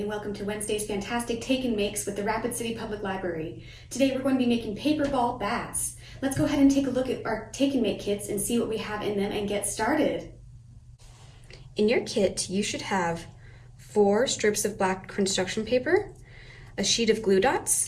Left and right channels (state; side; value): identical; both; correlation 1.00